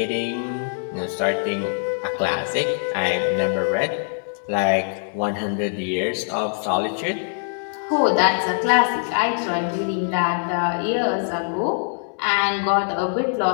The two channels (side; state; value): right; silent; digital silence